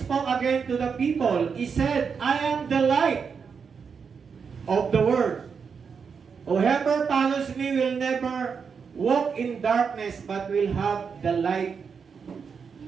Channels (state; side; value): quieter; left; 6.0 dB